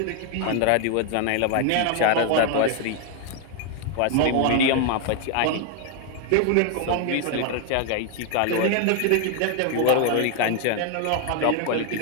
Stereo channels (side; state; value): both; different; correlation 0.01